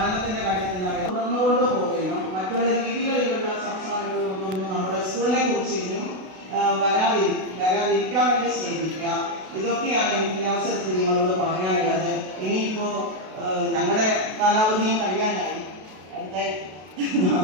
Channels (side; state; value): left; late; 32 ms